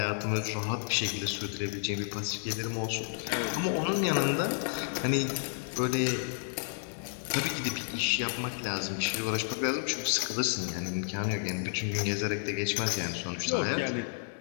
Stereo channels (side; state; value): right; silent; digital silence